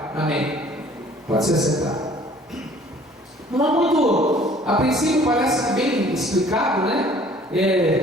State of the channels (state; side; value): normal; both; correlation 0.53